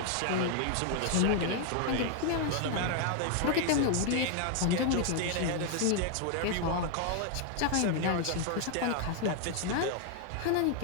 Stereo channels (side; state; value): both; different; correlation 0.00